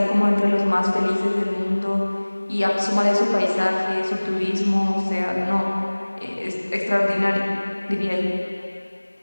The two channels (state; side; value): inverted; both; correlation -1.00